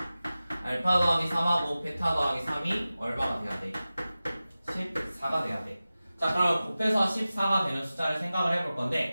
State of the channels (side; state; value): both; inverted; correlation -0.96